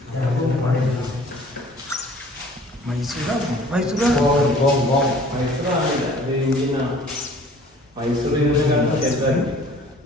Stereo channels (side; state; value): both; normal; correlation 0.51